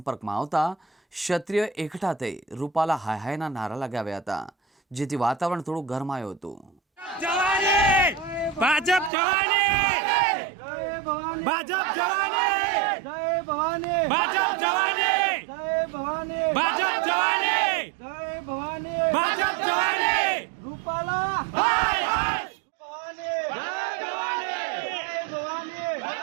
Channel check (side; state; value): left; drops out; at 9.1 s